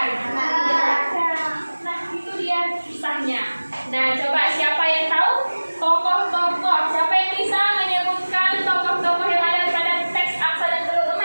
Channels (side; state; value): both; inverted; correlation -1.00